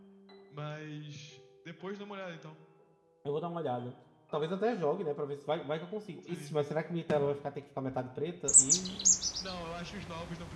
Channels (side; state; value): both; identical; correlation 1.00